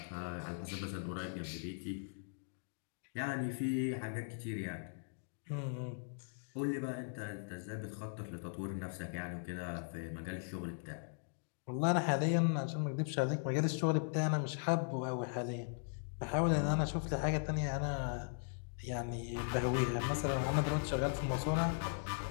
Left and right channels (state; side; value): silent; right; digital silence